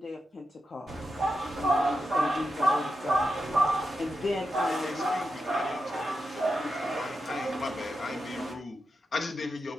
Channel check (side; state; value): both; normal; correlation 0.87